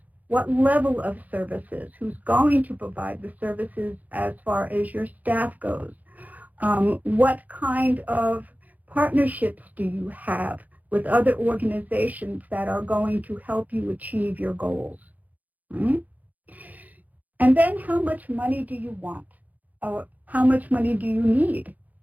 What level of services? Who's going to provide the services as far as your staff goes? What kind of partnerships do you have with other organizations that are going to help you achieve your goals? Right? And then how much money do you want? Or how much money do you need?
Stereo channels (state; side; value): late; left; 0.079 ms